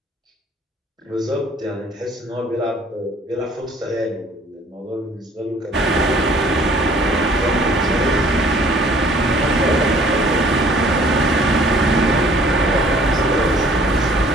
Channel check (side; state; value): both; normal; correlation 0.56